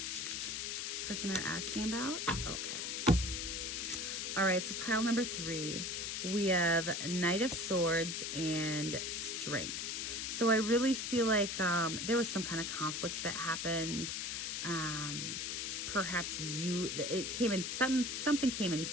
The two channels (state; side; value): noise; left; hiss, 3 dB below the sound